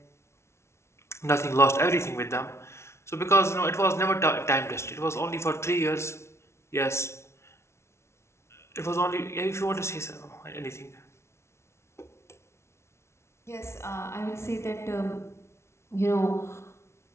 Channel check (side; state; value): right; late; 0.13 ms